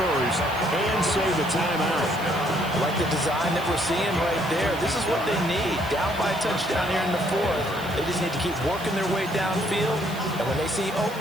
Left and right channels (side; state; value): right; noise; hiss, 18 dB below the sound